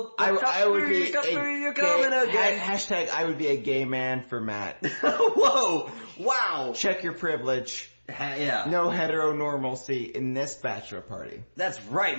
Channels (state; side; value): inverted; both; correlation -1.00